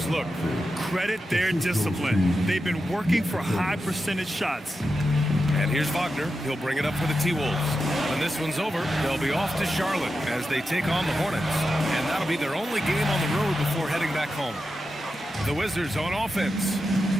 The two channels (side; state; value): both; normal; correlation 0.90